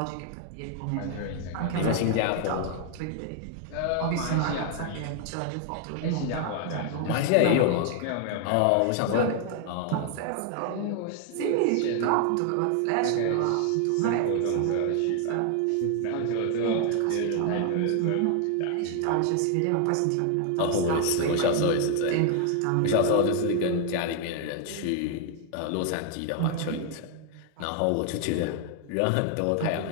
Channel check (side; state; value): both; different; correlation 0.00